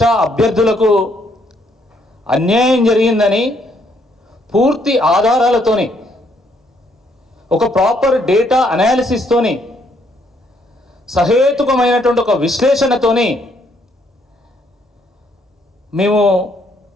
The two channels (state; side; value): normal; both; correlation 0.70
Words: అభ్యర్థులకు అన్యాయం జరిగిందని పూర్తి ఆధారాలతోని ఒక ప్రాపర్ డేటా అనాలిసిస్తోని సహేతుకమైనటువంటి ఒక విశ్లేషణతోని మేము